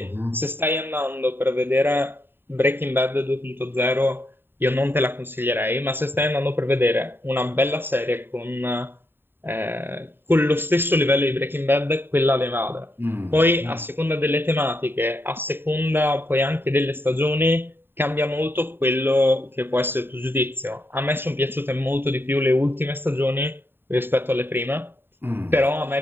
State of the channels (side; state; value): left; late; 0.10 ms